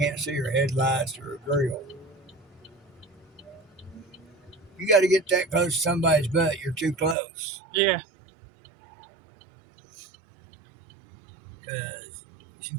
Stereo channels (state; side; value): drops out; left; at 7.2 s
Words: see her headlights or her grill. You got to get that close to somebody's butt. You're too close. Yeah. Because she